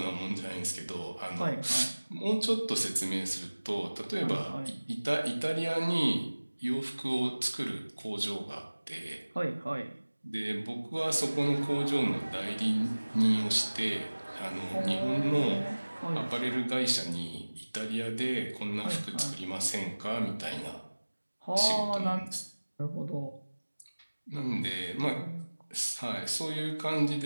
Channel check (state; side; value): inverted; both; correlation -1.00